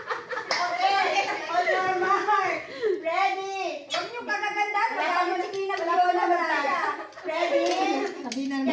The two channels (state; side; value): identical; both; correlation 1.00